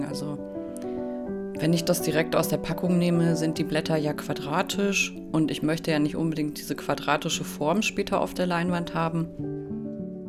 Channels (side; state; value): both; identical; correlation 1.00